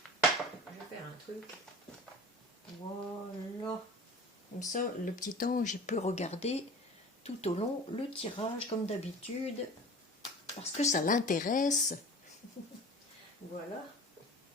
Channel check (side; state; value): both; normal; correlation 0.40